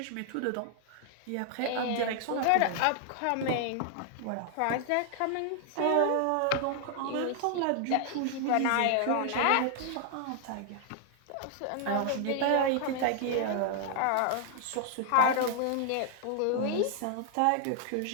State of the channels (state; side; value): different; both; correlation 0.00